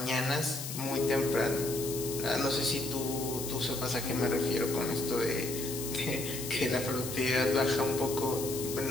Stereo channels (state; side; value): noise; left; hiss, 7 dB below the sound